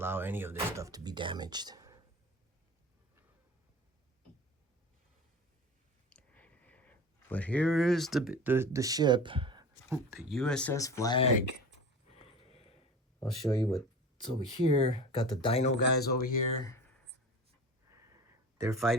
any of this stuff to be damaged. But here is the ship, the USS Flagg. I'll show you what's over here. Got the dino guys over here. They're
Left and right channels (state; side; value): normal; both; correlation 0.35